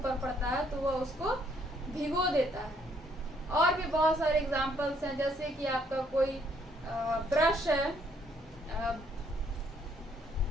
पड़ता है तो वह उसको भिगो देता है। और भी बहुत सारे एग्जाम्पल्स हैं, जैसे कि आपका कोई ब्रश है,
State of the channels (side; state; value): both; normal; correlation 0.68